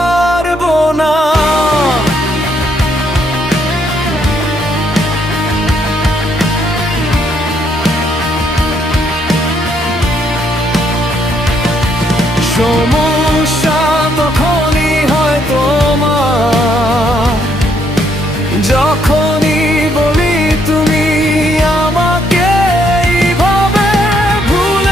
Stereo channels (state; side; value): normal; both; correlation 0.71